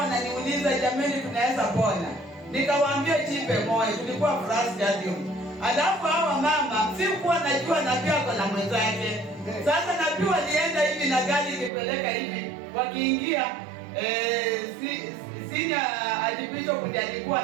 ananiuliza, jamani tunaweza pona? Nikawaambia jipe moyo, tulikuwa Afraha Stadium. Alafu hawa mama sikuwa najua nabii ako na mwenzake. Sasa nabii walienda hivi na gari ikipeleka hivi, wakiingia senior archbishop ndiye alikuwa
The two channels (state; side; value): drops out; left; at 11.7 s